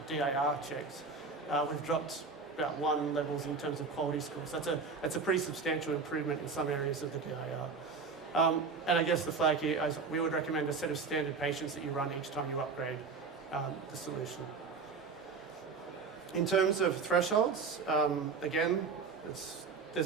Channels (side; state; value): left; quieter; 4.8 dB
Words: DIR checks, we've dropped about 1 levels in terms of quality scores. That's a pretty substantial improvement in some areas of the DIR. And I guess the flag here is we would recommend a set of standard patients that you run each time you upgrade the solution. In terms of thresholds, again,